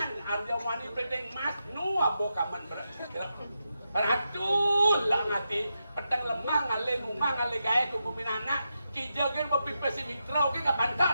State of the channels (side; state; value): both; inverted; correlation -0.87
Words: Arya Wani Bedeng Mas nu abo kaman berat. Ratul lah ngati petang lemah ngale numah ngale gae ku kuminana kijagen mapipesi mitra oke ka